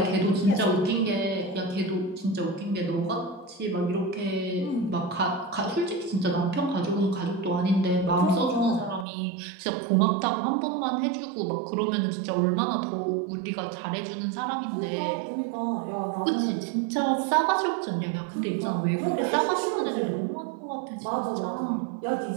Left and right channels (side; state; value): left; drops out; at 9.1 s